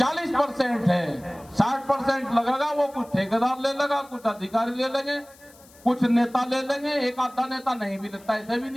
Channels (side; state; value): left; noise; hiss, 25 dB below the sound